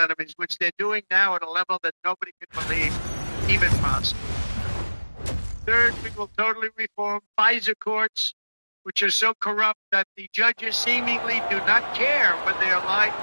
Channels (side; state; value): both; inverted; correlation -1.00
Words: which they're doing now at a level that nobody could believe even possible. Third, we will totally reform FISA courts, which are so corrupt that the judges seemingly do not care when they are lied